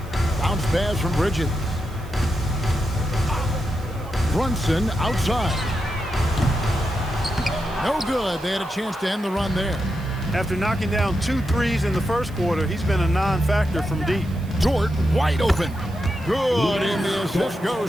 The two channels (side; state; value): right; noise; hiss, 25 dB below the sound